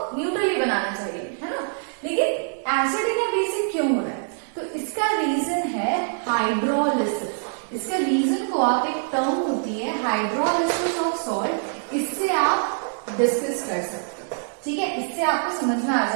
न्यूट्रल ही बनाना चाहिए, है ना। लेकिन एसिडिक या बेसिक क्यों हो रहा है? तो इसका रीजन है हाइड्रोलिसिस। इसका रीजन को आप एक टर्म होती है हाइड्रोलिसिस ऑफ सॉल्ट, इससे आप डिस्कस कर सकते हो, ठीक है। इससे आपको समझ में आ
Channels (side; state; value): left; silent; digital silence